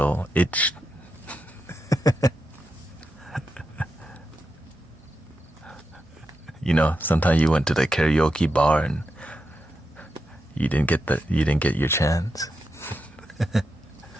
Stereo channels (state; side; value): normal; both; correlation 0.87